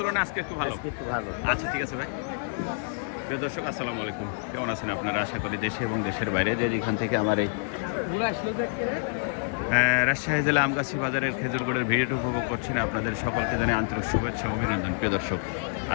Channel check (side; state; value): right; silent; 60 dB below the other